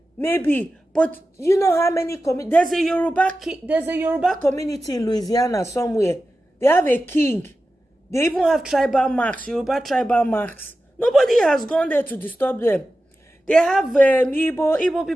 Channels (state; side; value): normal; both; correlation 0.93